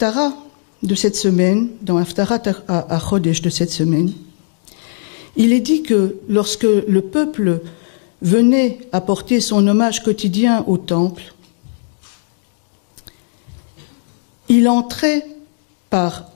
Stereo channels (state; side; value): silent; right; digital silence